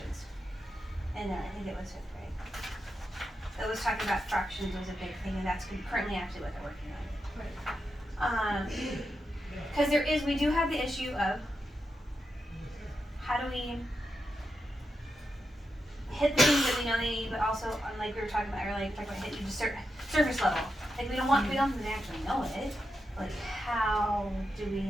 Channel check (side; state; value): both; normal; correlation 0.87